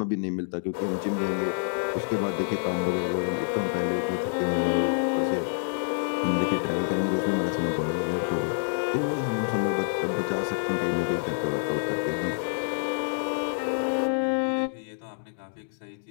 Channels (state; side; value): silent; right; digital silence